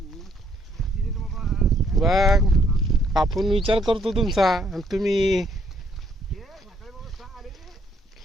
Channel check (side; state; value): both; normal; correlation 0.68